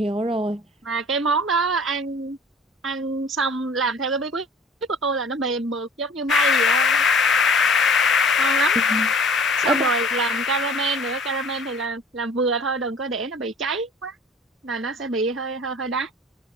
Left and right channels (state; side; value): normal; both; correlation 0.47